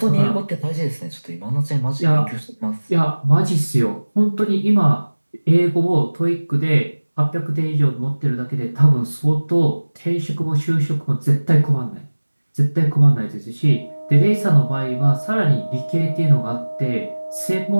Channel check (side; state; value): both; inverted; correlation -1.00